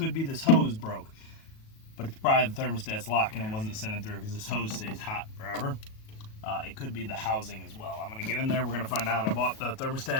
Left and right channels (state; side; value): late; right; 37 ms